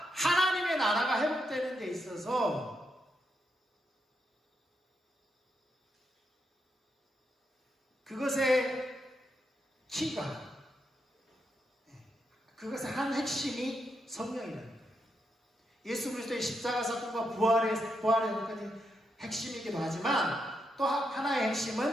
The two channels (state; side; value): normal; both; correlation 0.82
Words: 하나님의 나라가 회복되는 데 있어서 그것의 키가, 그것의 한 핵심이 성령이라는 거예요. 예수 그리스도의 십자가 사건과 부활의 핵심이기도 하지만 또 하나의